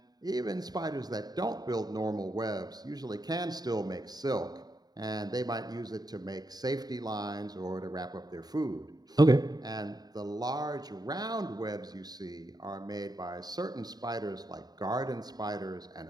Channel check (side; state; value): left; late; 0.19 ms